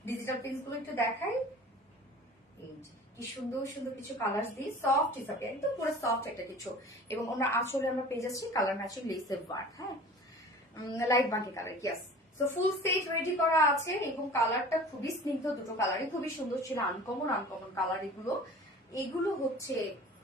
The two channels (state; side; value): normal; both; correlation 0.42